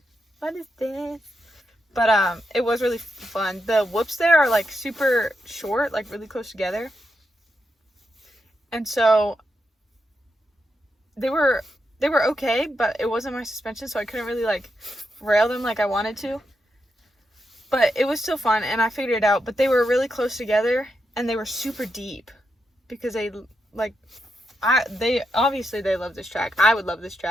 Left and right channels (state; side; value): normal; both; correlation 0.84